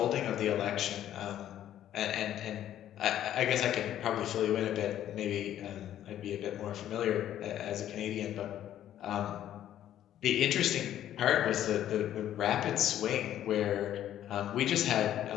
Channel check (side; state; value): right; quieter; 11.6 dB